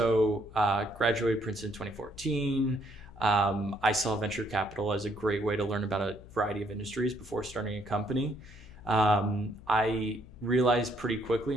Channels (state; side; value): noise; left; hum, 19 dB below the sound